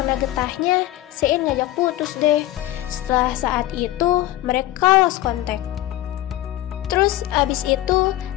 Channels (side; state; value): right; quieter; 14.9 dB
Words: getahnya, Se-in ngajak putus deh. Setelah saat itu, mereka lost contact. Terus abis itu